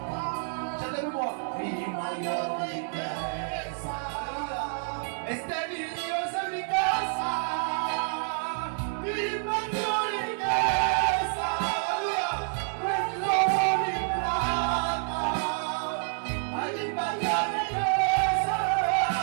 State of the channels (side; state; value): left; silent; digital silence